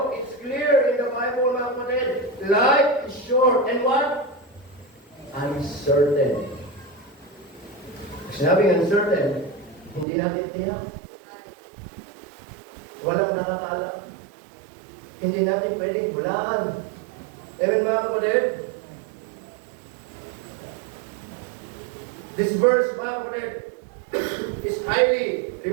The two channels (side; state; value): left; drops out; at 10.1 s